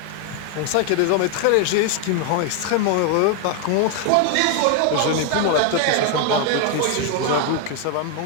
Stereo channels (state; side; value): different; both; correlation 0.01